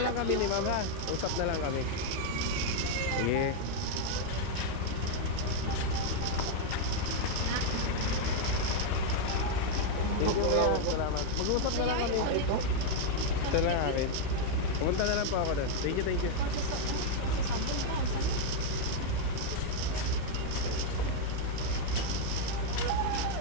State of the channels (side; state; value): both; different; correlation 0.00